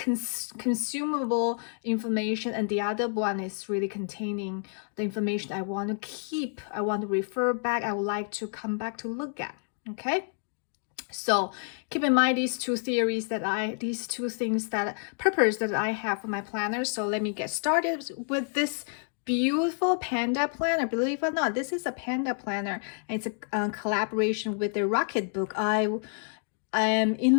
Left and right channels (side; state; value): right; silent; 59 dB below the other